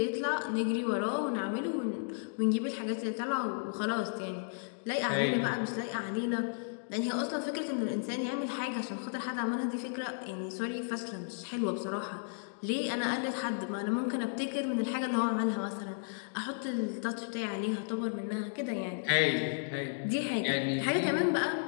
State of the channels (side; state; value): right; silent; digital silence